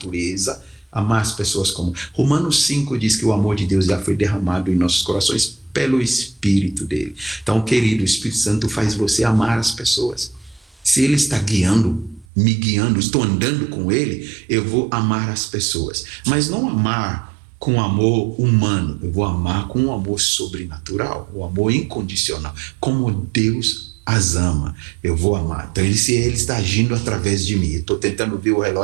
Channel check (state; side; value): drops out; left; at 12.2 s